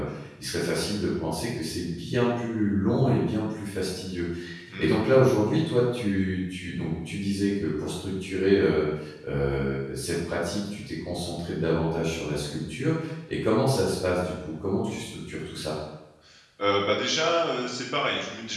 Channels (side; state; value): both; identical; correlation 1.00